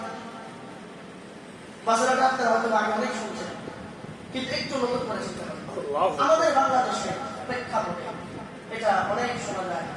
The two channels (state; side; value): identical; both; correlation 1.00